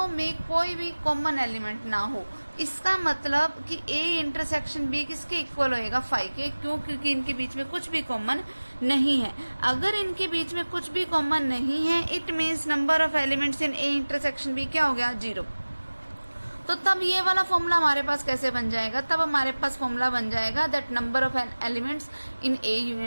में कोई भी कॉमन एलिमेंट ना हो। इसका मतलब कि a इंटरसेक्शन b किसके इक्वल होएगा 5 के। क्यों? क्योंकि इनके बीच में कुछ भी कॉमन नहीं है। अगर इनके बीच में कुछ भी कॉमन नहीं है, it means number of elements in a intersection b क्या हो गया 0। तो तब ये वाला फॉर्मूला हमारे पास कैसे बन जाएगा, तब हमारे पास फॉर्मूला बन जाएगा that number of elements in a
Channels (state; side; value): inverted; both; correlation -1.00